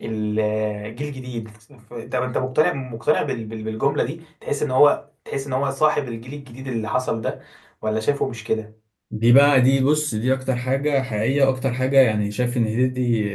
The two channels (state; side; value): identical; both; correlation 1.00